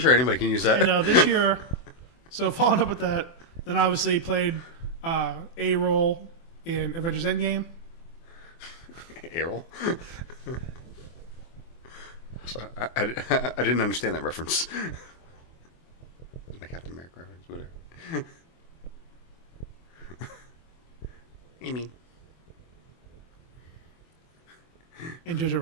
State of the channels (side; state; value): right; late; 24 ms